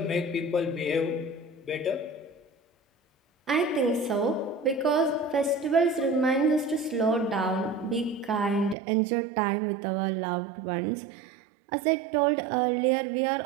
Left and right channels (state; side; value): drops out; left; at 8.8 s